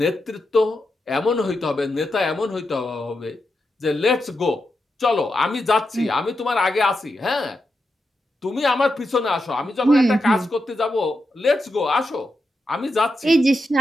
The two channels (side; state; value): both; normal; correlation 0.87